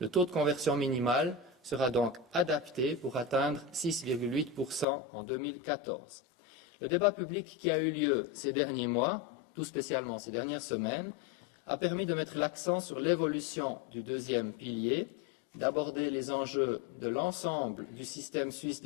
taux de conversion minimal sera donc adapté pour atteindre 6,8% en 2014. Le débat public qui a eu lieu ces derniers mois, tout spécialement ces dernières semaines, a permis de mettre l'accent sur l'évolution du deuxième pilier, d'aborder les enjeux de l'ensemble du système suisse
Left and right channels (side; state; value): right; drops out; at 4.9 s